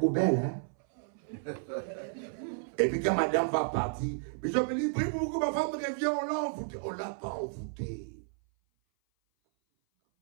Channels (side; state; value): left; silent; 56 dB below the other